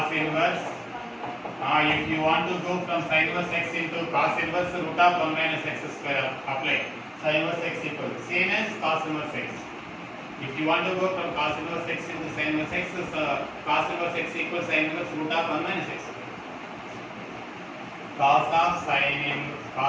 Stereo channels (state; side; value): identical; both; correlation 1.00